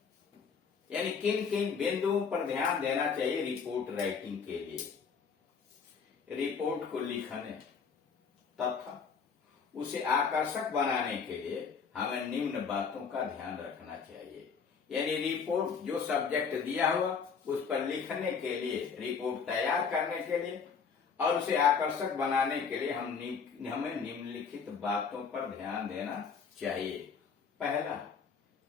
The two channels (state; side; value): quieter; right; 6.0 dB